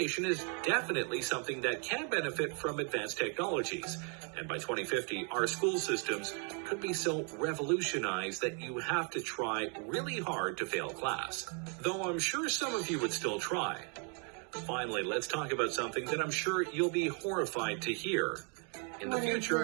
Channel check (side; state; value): left; quieter; 38.6 dB